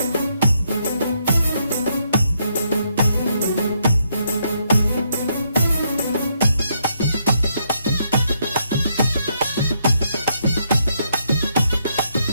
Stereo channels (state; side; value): inverted; both; correlation -0.75